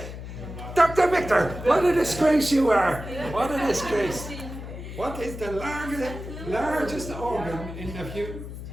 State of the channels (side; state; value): left; noise; hum, 10 dB below the sound